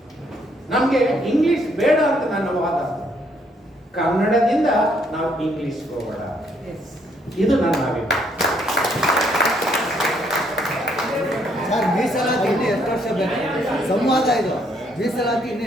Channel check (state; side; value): normal; both; correlation 0.70